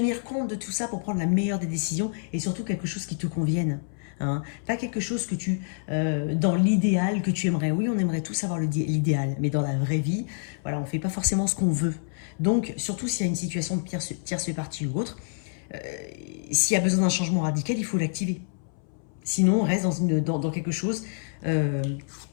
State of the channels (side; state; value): right; silent; 60 dB below the other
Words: compte de tout ça pour prendre la meilleure des décisions et surtout quelque chose qui te convienne. Hein. Pas quelque chose que dans l'idéal que tu aimerais. Oui, on aimerait tous avoir l'idéal, mais dans la vraie vie, voilà, on ne fait pas forcément ce qu'on veut. Donc, surtout s'il y a une situation de tierce partie ou autre, s'il y a besoin d'un changement radical, il faut l'activer. Sinon, on reste dans quelque chose